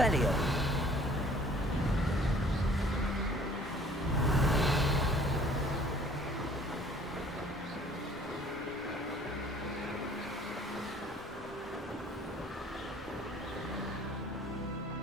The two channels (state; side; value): normal; both; correlation 0.54